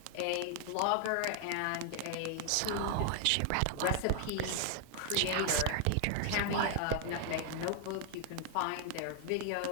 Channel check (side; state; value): both; different; correlation 0.00